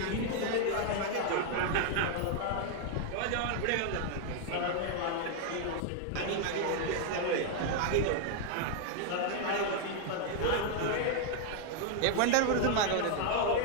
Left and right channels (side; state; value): both; different; correlation 0.00